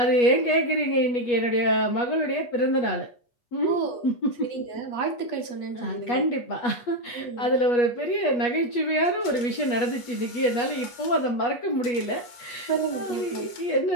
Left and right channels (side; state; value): right; late; 8.3 ms